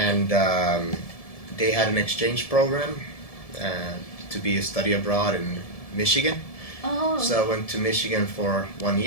they had an exchange program to be a study abroad in Michigan. Oh. So I went to Michigan for 1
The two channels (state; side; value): late; right; 1.7 ms